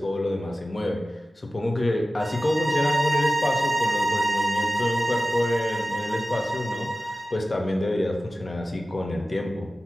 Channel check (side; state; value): both; normal; correlation 0.95